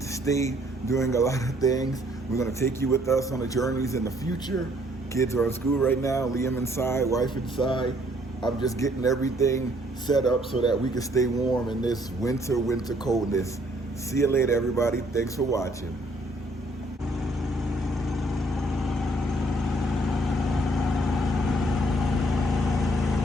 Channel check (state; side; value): normal; both; correlation 0.64